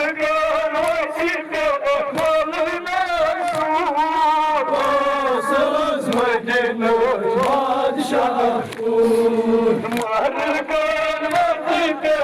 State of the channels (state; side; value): identical; both; correlation 1.00